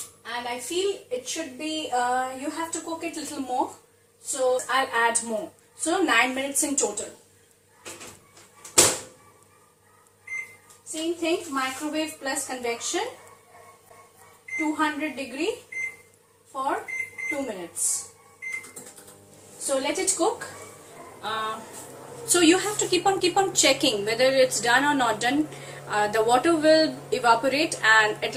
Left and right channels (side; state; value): both; identical; correlation 1.00